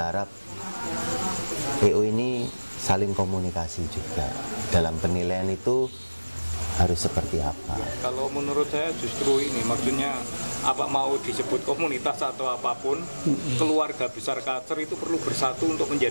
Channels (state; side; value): inverted; both; correlation -1.00